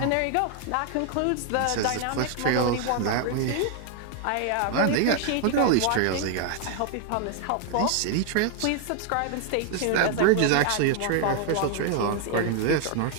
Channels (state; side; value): different; both; correlation 0.00